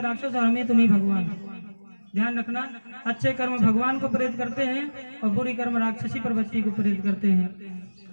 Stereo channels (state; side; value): inverted; both; correlation -1.00